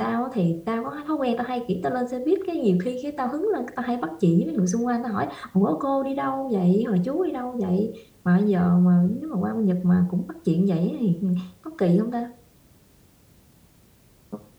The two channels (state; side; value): identical; both; correlation 1.00